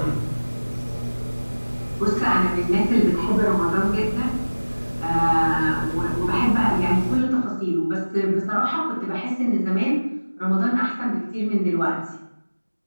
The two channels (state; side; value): inverted; both; correlation -1.00